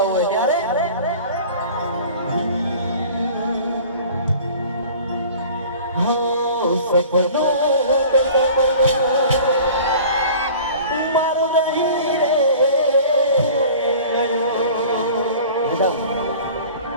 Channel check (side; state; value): both; inverted; correlation -0.44